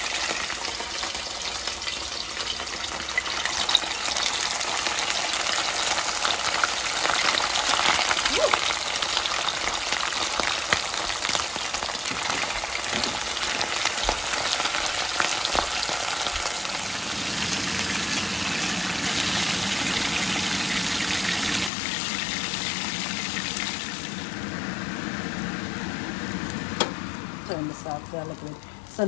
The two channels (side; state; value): right; drops out; at 21.7 s